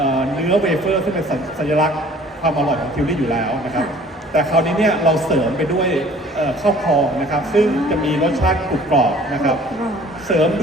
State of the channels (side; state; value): both; normal; correlation 0.52